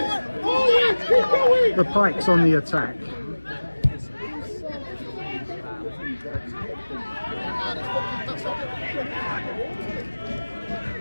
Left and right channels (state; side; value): inverted; both; correlation -1.00